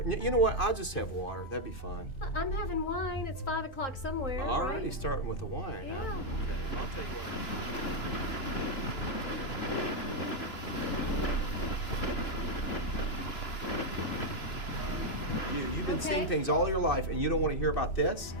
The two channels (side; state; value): right; late; 2.9 ms